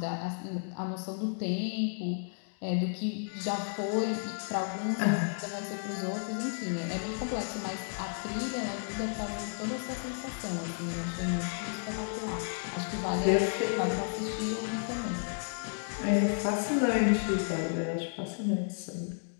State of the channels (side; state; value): right; silent; digital silence